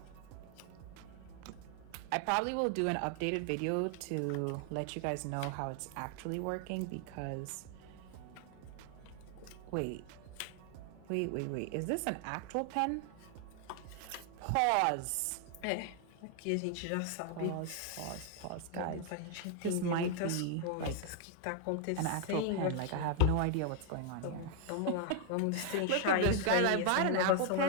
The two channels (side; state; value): both; different; correlation 0.00